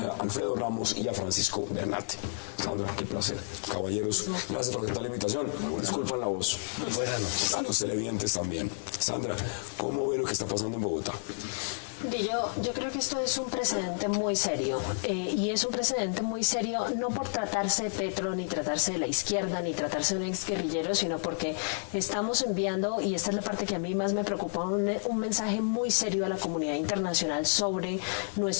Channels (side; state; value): right; silent; digital silence